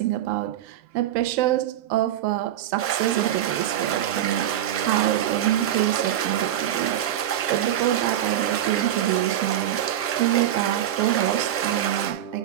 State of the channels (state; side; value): quieter; left; 11.5 dB